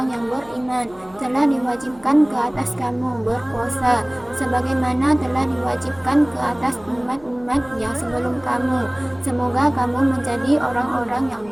yang beriman, telah diwajibkan ke atas kamu berpuasa, sebagaimana telah diwajibkan ke atas umat-umat yang sebelum kamu. Semoga kamu menjadi orang-orang yang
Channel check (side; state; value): left; noise; hum, 26 dB below the sound